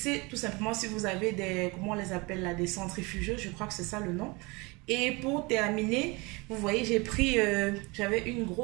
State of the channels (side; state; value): left; quieter; 26.3 dB